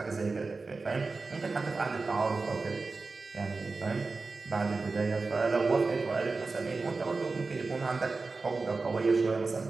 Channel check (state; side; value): quieter; left; 3.9 dB